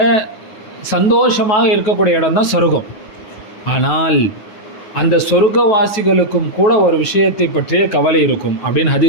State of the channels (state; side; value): late; right; 9.6 ms